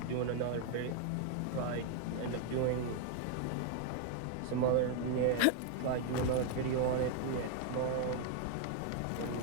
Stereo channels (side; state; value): both; different; correlation 0.00